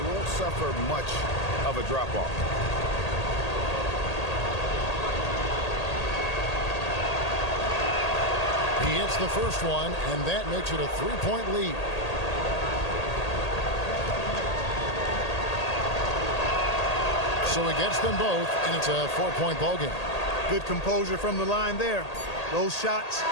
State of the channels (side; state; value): right; late; 1.8 ms